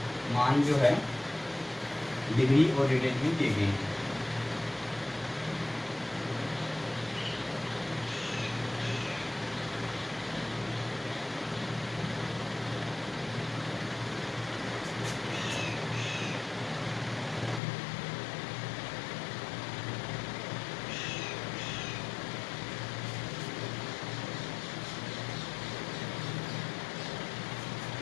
मान जो है डिग्री और रेडियन में दिए गए हैं।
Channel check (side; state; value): right; drops out; at 17.6 s